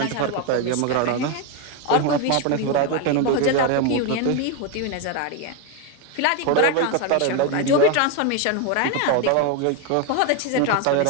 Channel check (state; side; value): different; both; correlation 0.02